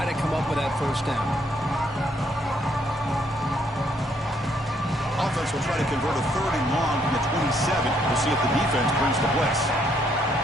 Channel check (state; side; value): normal; both; correlation 0.70